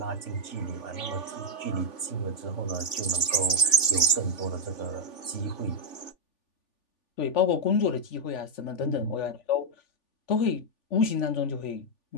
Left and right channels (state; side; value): late; right; 3.4 ms